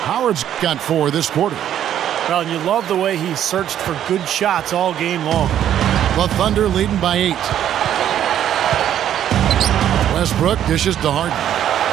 Howard's got 4 this quarter. Well, and you love the way he searched for good shots all game long. The Thunder leading by 8. Westbrook dishes to Harden.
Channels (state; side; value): quieter; left; 10.6 dB